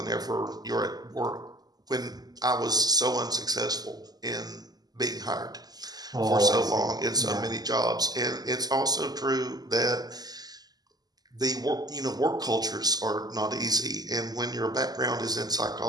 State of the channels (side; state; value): left; late; 0.19 ms